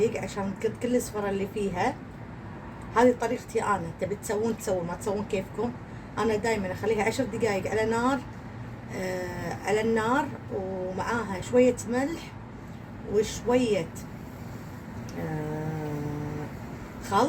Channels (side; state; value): both; identical; correlation 1.00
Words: عشان كل الصفرة اللي فيها. هذه طريقتي انا، تبي تسوون ما تسوون كيفكم. انا دائما اخليها 10 دقائق على نار على النار، ومعاها شويه ملح وشويه